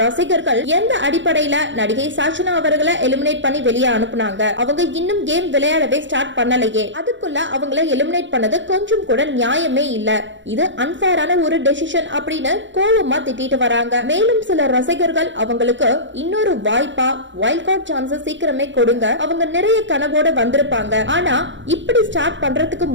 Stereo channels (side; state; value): left; late; 0.54 ms